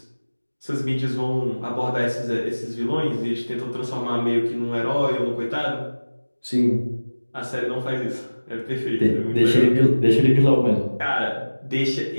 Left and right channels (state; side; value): inverted; both; correlation -1.00